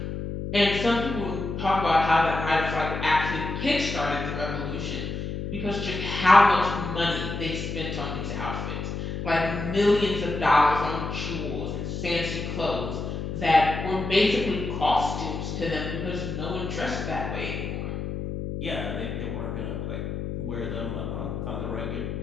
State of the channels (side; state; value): left; noise; hum, 5 dB below the sound